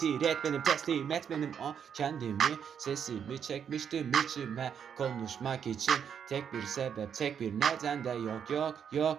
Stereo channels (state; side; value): quieter; left; 7.8 dB